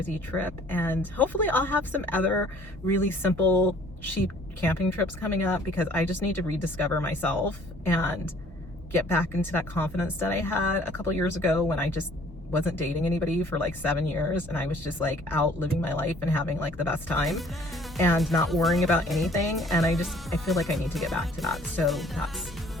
trip. And hopefully I'll have some other really simple, cheap camping trips coming up, because I just need to rediscover myself and get back into that confidence that I had a couple years ago when I just wasn't dating anybody for like 7 years, and I was just like out living my life and having like the best time and not worrying about anything. And I feel like I need to get back to that. So that's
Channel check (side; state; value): both; normal; correlation 0.56